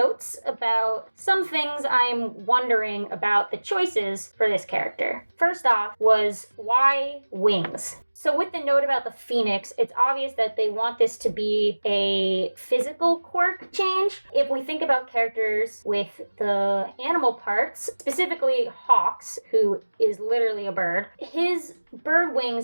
about some things I'm wondering about the choices for this character. First off was, why wings? So with the note about the Phoenix, it's obvious that they want this to be a physical quirk change. If we think about characters with the animal parts, specifically Hawks, who is literally a bird, his bird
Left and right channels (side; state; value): both; inverted; correlation -1.00